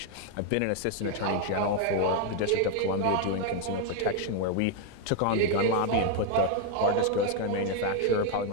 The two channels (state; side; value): different; both; correlation 0.01